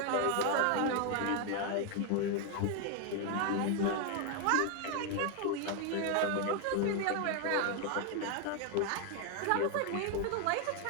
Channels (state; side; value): different; both; correlation 0.01